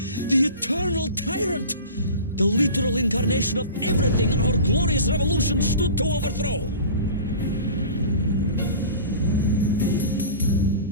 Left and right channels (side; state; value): both; inverted; correlation -0.38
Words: the eternal tyrant. The literal incarnation of everything our glorious revolution stood to overthrow.